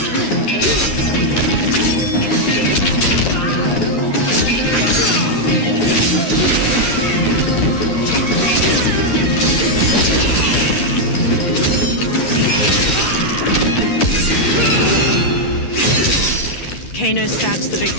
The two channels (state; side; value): late; right; 11 ms